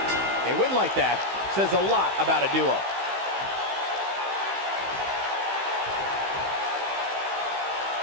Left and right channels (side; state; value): left; late; 15 ms